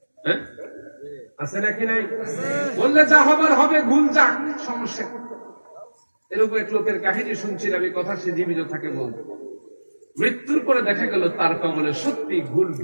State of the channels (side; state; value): both; inverted; correlation -1.00